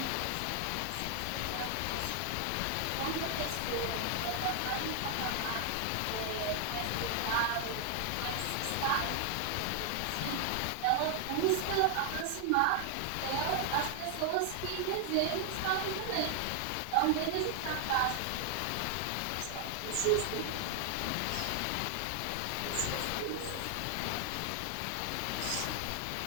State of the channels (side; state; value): both; different; correlation 0.00